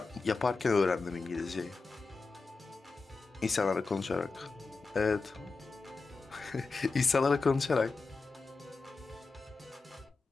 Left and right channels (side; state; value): right; quieter; 4.1 dB